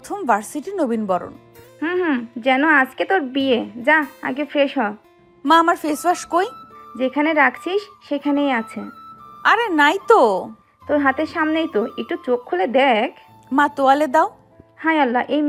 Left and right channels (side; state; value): both; identical; correlation 1.00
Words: ভার্সিটি নবীন বরণ। যেন আজকে তোর বিয়ে। যা আগে ফ্রেশ হ। মা আমার ফেস ওয়াশ কই? যেখানে রাখছিস সেখানেই আছে। আরে নাই তো। তোর হাতের সামনেই তো, একটু চোখ খুলে দেখ। মা তোয়ালে দাও। হায় আল্লাহ, এই